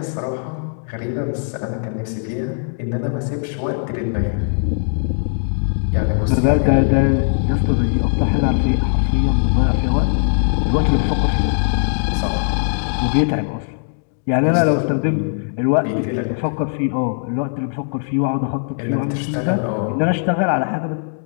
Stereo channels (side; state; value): right; silent; digital silence